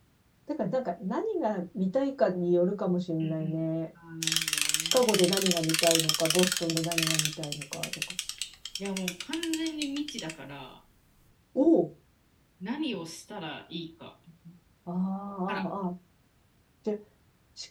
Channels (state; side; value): identical; both; correlation 1.00